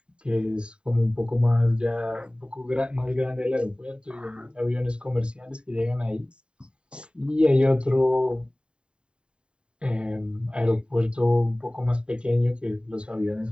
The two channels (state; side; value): late; left; 0.052 ms